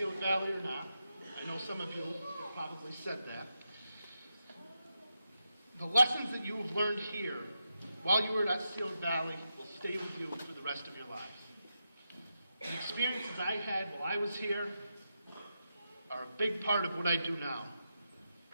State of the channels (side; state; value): both; inverted; correlation -0.86